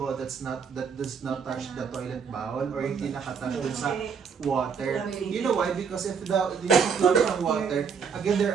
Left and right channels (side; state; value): left; quieter; 6.3 dB